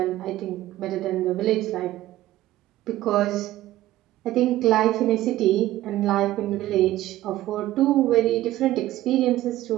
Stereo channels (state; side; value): quieter; left; 15.1 dB